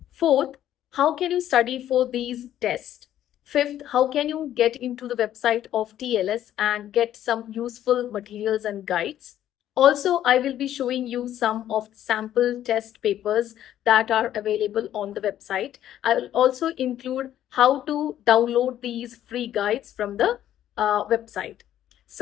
Fourth, how can you study for these tests? Fifth, how can you get into the website of TLS and get some useful materials and guides? Also, I will be showing you some of the sample test papers that are available on the website. I will also include how to download these free guides from the website.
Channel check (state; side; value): quieter; right; 11.7 dB